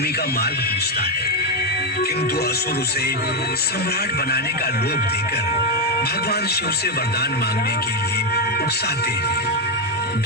का मार्ग पूछता है, किंतु असुर उसे सम्राट बनाने का लोभ देकर भगवान शिव से वरदान मांगने के लिए उकसाते हैं।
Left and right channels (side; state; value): both; normal; correlation 0.06